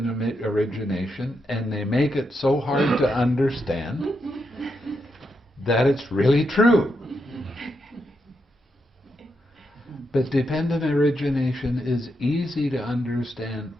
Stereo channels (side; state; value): both; normal; correlation 0.83